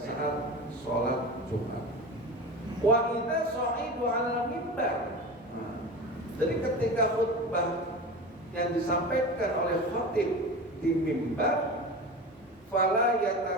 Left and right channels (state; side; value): normal; both; correlation 0.30